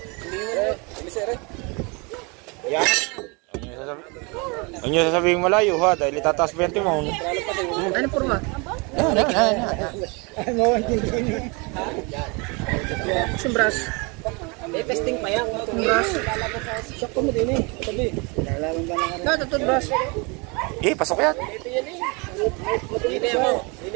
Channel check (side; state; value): left; quieter; 29.9 dB